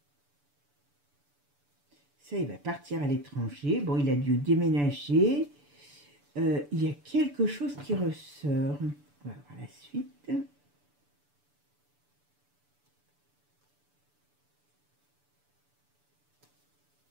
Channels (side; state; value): left; late; 6.9 ms